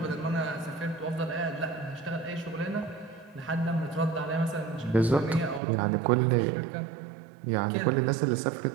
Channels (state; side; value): drops out; left; at 5.6 s